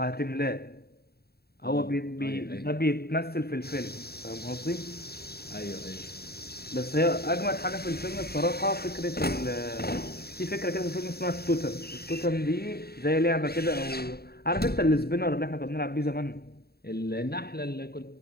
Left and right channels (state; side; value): late; right; 0.46 ms